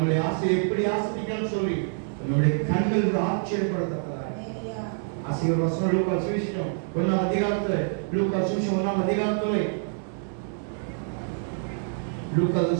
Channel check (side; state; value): left; silent; 61 dB below the other